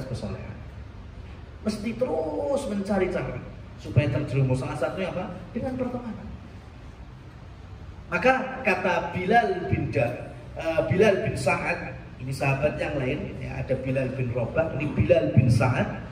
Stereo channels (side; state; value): both; identical; correlation 1.00